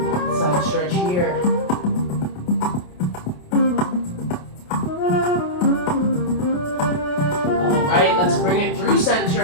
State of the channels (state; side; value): late; right; 28 ms